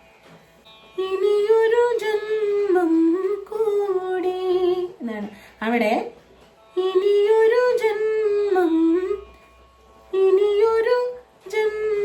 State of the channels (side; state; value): both; identical; correlation 1.00